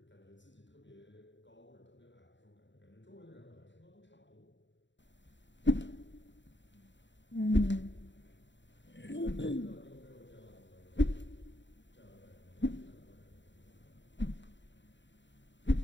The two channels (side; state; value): right; late; 0.53 ms